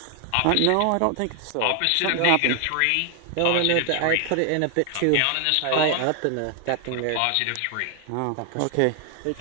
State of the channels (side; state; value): both; different; correlation 0.00